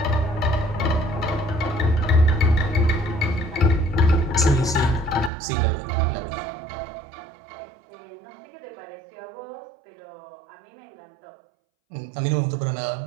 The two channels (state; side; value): drops out; left; at 5.3 s